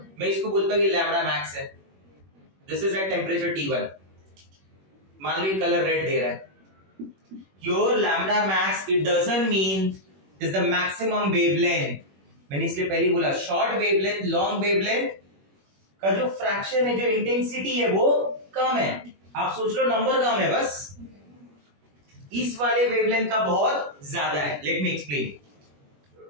मैं इसको बोलता हूँ कि लैम्बडा मैक्स है। This is at temperature T1। मान लो ये कलर रेड दे रहा है, your lambda max it doesn't mean is the maximum wavelength. मैंने इसलिए पहले बोला शॉर्ट वेवलेंथ, लॉन्ग वेवलेंथ का जो फ्रैक्शन है, जो इंटेंसिटी है वो कम है। आप सोच लो नंबर कम है बस, इस वाले वेवलेंथ का बहुत ज्यादा है। Let me explain.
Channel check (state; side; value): late; left; 21 ms